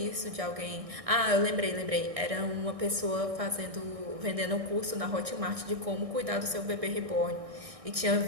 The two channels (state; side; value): late; left; 1.6 ms